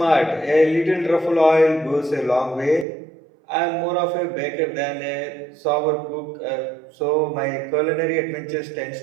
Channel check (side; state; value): left; drops out; at 2.9 s